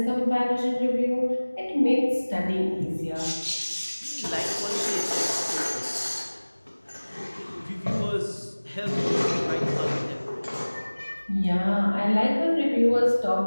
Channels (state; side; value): inverted; both; correlation -1.00